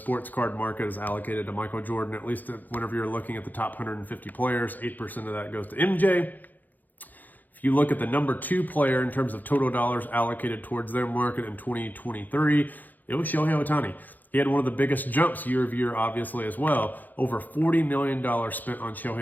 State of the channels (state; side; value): late; right; 0.084 ms